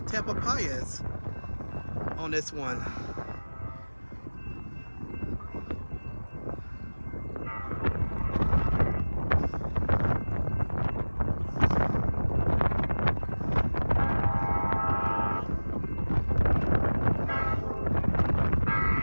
Tamalpais on this one.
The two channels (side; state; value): both; inverted; correlation -1.00